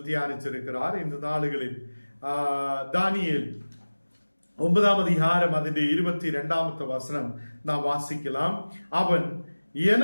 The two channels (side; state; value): both; inverted; correlation -1.00